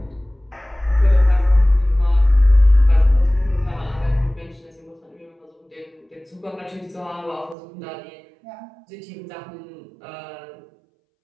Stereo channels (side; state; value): left; drops out; at 7.6 s